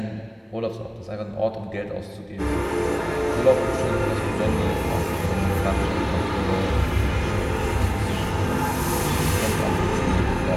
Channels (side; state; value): both; identical; correlation 1.00